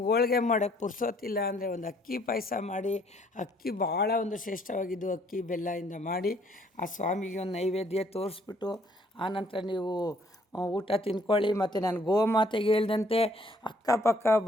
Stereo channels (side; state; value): both; normal; correlation 0.64